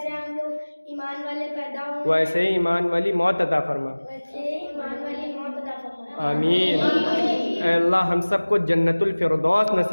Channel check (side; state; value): both; inverted; correlation -1.00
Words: हम लोग ईमान वाले पैदा हुए वैसे ही ईमान वाली मौत अता फरमा। वैसे ईमान वाली मौत अता फरमाए। आमीन। ऐ अल्लाह हम सबको जन्नतुल फिरदौस